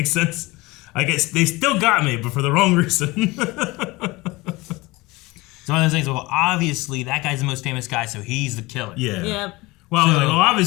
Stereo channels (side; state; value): right; quieter; 21.9 dB